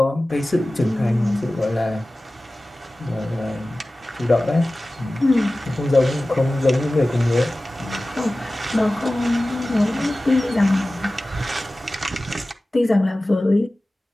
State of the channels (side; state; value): both; normal; correlation 0.97